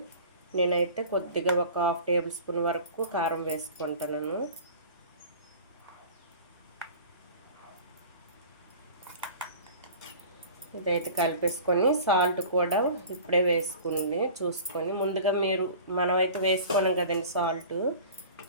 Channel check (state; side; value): inverted; both; correlation -0.41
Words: నేనైతే కొద్దిగా ఒక 1/2 టేబుల్ స్పూన్ వరకు కారం వేసుకుంటాను. ఇదైతే కలిపేసుకొని సాల్ట్ కూడా ఇప్పుడే వేసుకుంది చూసుకొని. ముందుగా మనమైతే వేసుకోలేం కదండి సాల్ట్,